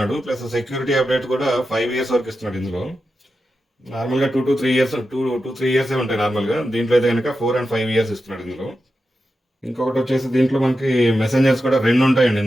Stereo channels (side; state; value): both; normal; correlation 0.90